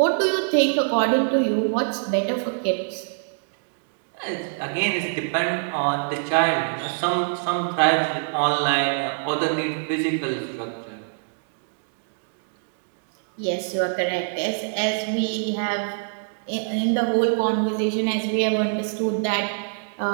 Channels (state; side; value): silent; left; digital silence